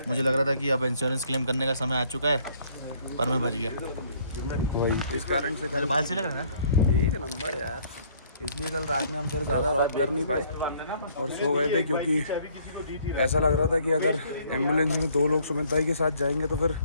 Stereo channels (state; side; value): inverted; both; correlation -0.62